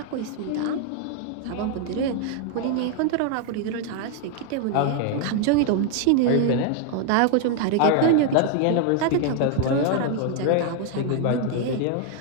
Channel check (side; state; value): both; different; correlation 0.00